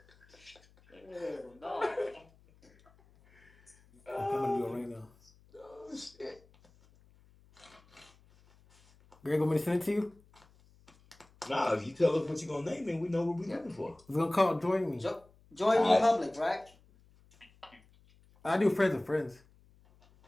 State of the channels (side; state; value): left; noise; hum, 29 dB below the sound